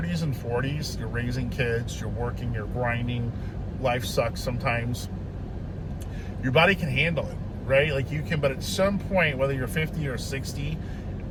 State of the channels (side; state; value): both; identical; correlation 1.00